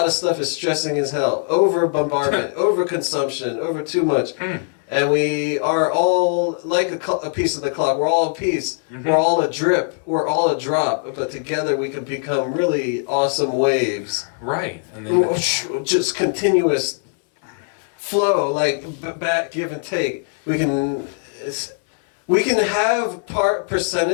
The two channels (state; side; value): silent; right; 56 dB below the other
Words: of stuff is stressing as hell. Over bombardment, over consumption, over too much, and we are all like a piece of the clock. We're all a piece. We're all a drip. We're all a drop. But together we can become really awesome waves. Right. And then just continuous flow, like back give and take. We can have